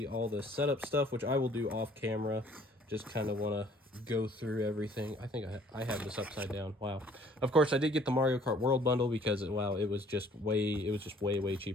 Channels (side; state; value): both; normal; correlation 0.57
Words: all the setup stuff, which I will do off camera. Just kind of want to go through everything. I think I have this upside down. Wow. Of course, I did get the Mario Kart World bundle because it was just way